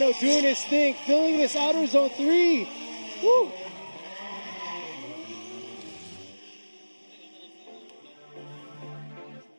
doing his thing, filling this outer zone 3. Woo!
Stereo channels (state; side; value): inverted; both; correlation -1.00